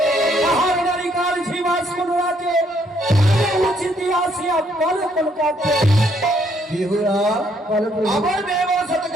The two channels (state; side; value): normal; both; correlation 0.69